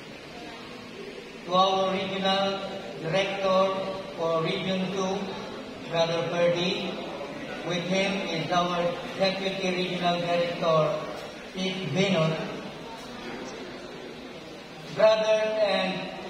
To our Regional Director for Region 2, Brother Ferdy. With him is our Deputy Regional Director, Ms. Venus. Brothers and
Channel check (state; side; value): identical; both; correlation 1.00